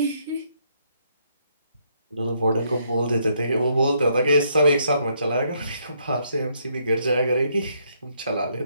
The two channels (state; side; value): inverted; both; correlation -0.72